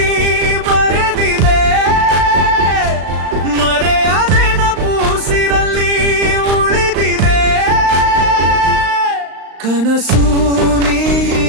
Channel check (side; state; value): left; late; 35 ms